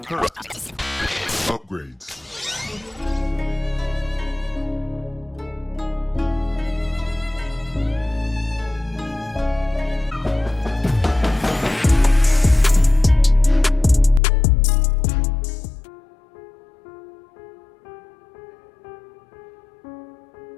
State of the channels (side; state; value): right; drops out; at 14.2 s